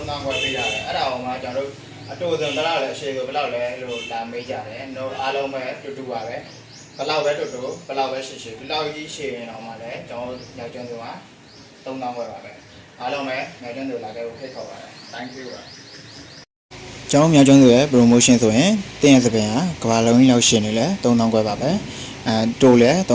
ခွဲပေးရတယ်အဲ့ဒါအောင်မှကျွန်တော်တို့အတူတူဘယ်လောက်လဲအရှိဆိုဘယ်လောက်လဲလို့လာမေးကြတယ်တို့အားလုံးပဲတူတူပါပဲဘယ်လောက်ပဲတူတူဘယ်လောက်ပဲရှိရှိဒီလောက်ကြီးရှိရင်တော့မှလည်းကျွန်တော်မြောက်ကျွန်းစုမှာ3000ခွဲပါပဲအားလုံးပဲမြောက်ကျွန်းစုလာခဲ့ဖို့ဖိတ်ခေါ်ပါတယ် thank you ပါကျောင်းမြောက်ကျွန်းစုရဲ့ promotion ဆိုရင်တင်းရစပင်ကကဘာလုံးကြီးလောက်ရှင်နေလဲ3000ခွဲပါပဲတိုးလဲ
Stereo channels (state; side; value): identical; both; correlation 1.00